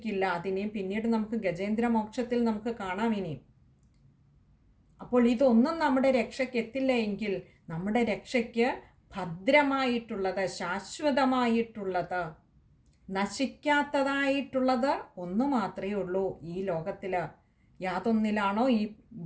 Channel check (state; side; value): identical; both; correlation 1.00